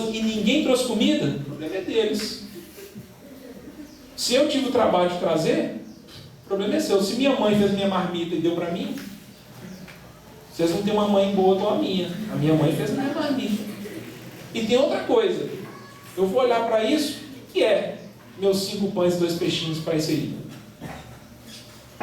e ninguém trouxe comida? O problema é deles. Se eu tive o trabalho de trazer, o problema é seu. Se minha mãe fez minha marmita e deu para mim, vocês não têm uma mãe boa igual a minha. A minha mãe fez minha marmita. E tem outra coisa. Eu vou olhar para isso, o que é meus 5 pães e 2 peixinhos para isso aí?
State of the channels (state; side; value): identical; both; correlation 1.00